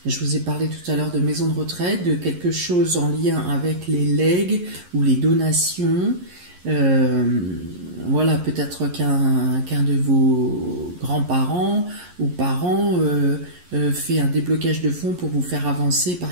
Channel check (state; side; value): late; left; 11 ms